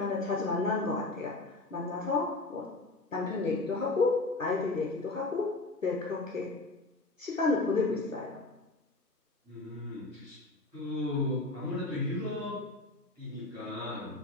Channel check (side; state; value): right; quieter; 3.1 dB